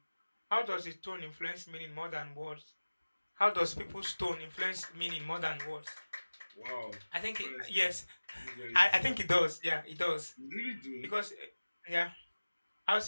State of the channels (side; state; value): both; inverted; correlation -1.00